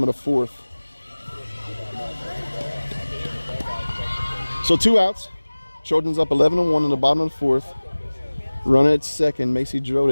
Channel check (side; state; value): both; inverted; correlation -1.00